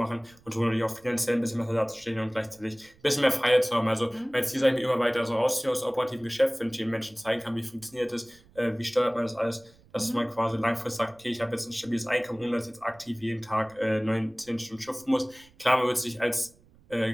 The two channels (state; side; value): noise; right; rumble, 28 dB below the sound